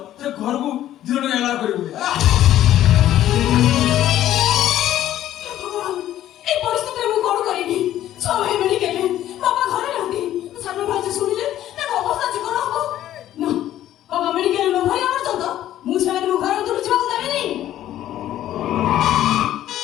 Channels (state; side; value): quieter; right; 12.6 dB